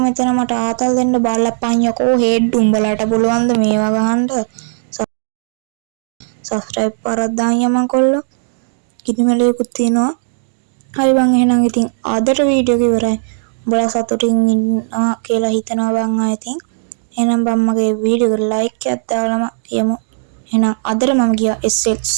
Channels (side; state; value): left; silent; digital silence